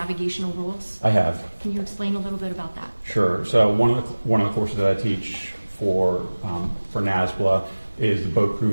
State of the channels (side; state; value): both; inverted; correlation -1.00